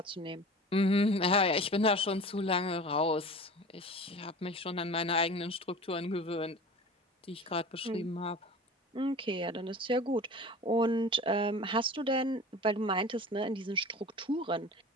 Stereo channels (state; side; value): normal; both; correlation 0.37